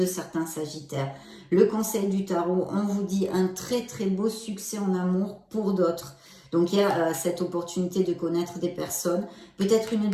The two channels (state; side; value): identical; both; correlation 1.00